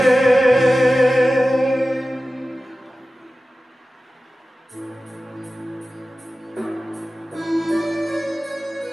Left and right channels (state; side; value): normal; both; correlation 0.95